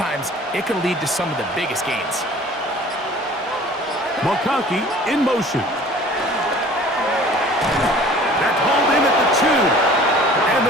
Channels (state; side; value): normal; both; correlation 0.48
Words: it can lead to some of the biggest gains. McConkey in motion. That's hauled in at the 2. And